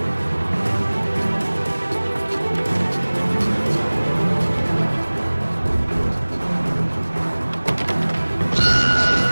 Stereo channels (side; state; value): both; inverted; correlation -1.00